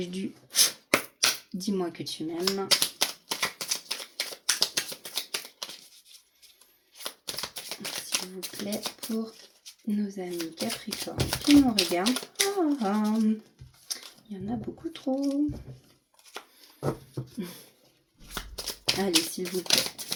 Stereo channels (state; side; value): identical; both; correlation 1.00